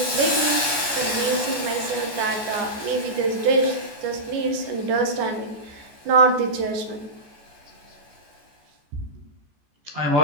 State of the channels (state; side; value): late; left; 14 ms